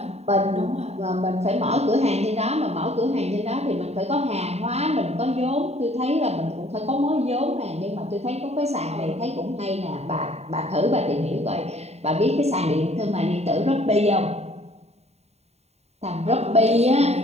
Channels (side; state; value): left; late; 0.31 ms